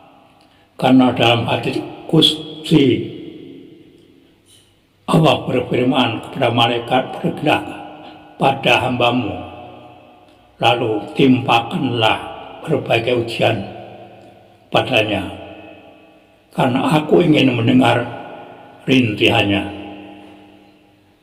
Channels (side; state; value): both; identical; correlation 1.00